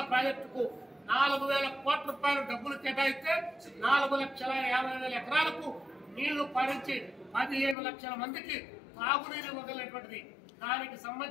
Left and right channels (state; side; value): drops out; right; at 7.8 s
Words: ప్రాజెక్టుకు 4,000 కోట్ల రూపాయలు డబ్బులు కేటాయిస్తే 4,50,000 ఎకరాలకు నీళ్లు పారించి 15 లక్షల మందికి తాగునీరు ఇవ్వగలిగినటువంటిది. దానికి